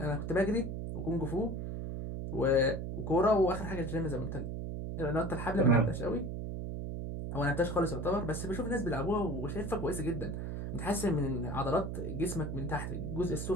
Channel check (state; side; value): noise; right; hum, 4 dB below the sound